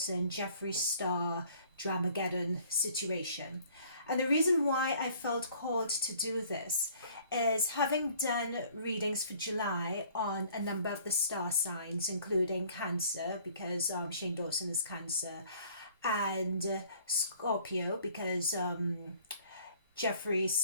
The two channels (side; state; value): both; inverted; correlation -0.55